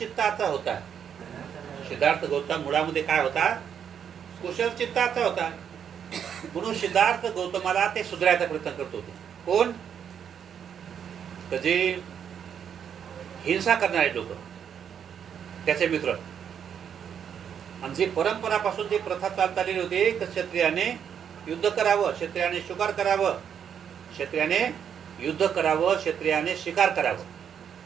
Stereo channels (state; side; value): quieter; left; 8.2 dB